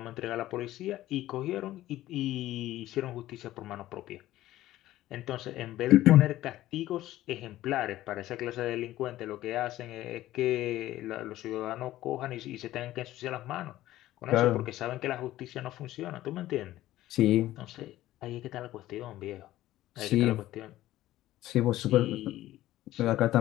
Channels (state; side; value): quieter; right; 14.9 dB